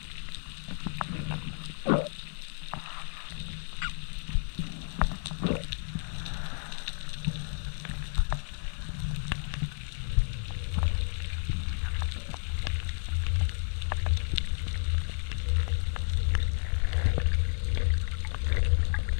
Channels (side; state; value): right; silent; digital silence